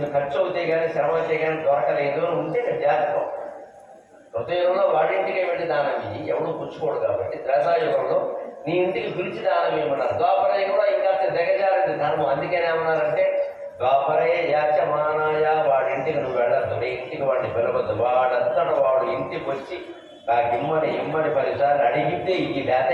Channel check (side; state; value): both; identical; correlation 1.00